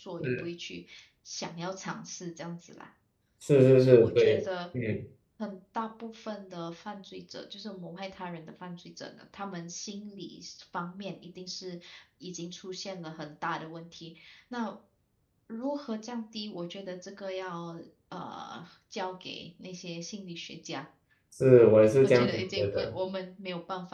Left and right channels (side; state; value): both; identical; correlation 1.00